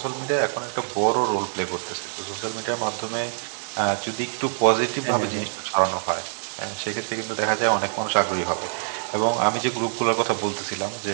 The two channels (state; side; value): silent; left; digital silence